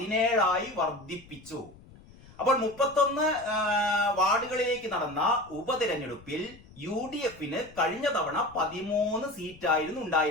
വർദ്ധിപ്പിച്ചു. അപ്പോൾ 31 വാർഡുകളിലേക്ക് നടന്ന ഉപതെരഞ്ഞെടുപ്പിൽ UDF-ന് കഴിഞ്ഞ തവണ 13 സീറ്റായിരുന്നു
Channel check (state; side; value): noise; left; rumble, 22 dB below the sound